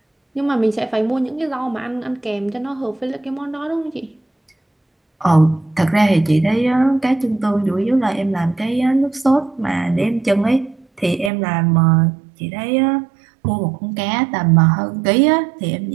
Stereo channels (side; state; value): left; drops out; at 11.3 s